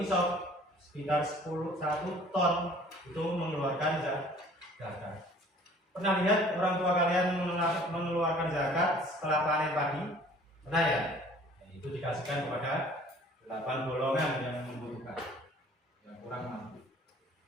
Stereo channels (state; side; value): normal; both; correlation 0.51